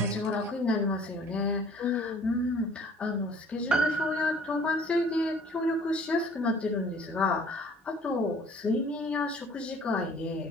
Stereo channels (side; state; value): both; normal; correlation 0.53